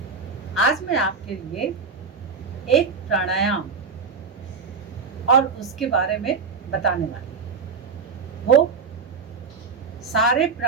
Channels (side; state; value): left; quieter; 5.2 dB